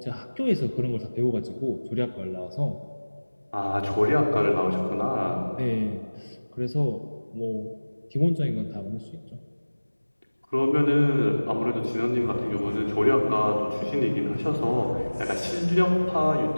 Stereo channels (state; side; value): inverted; both; correlation -1.00